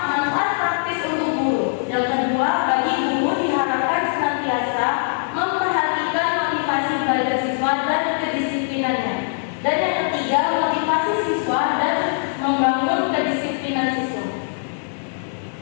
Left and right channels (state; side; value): silent; right; digital silence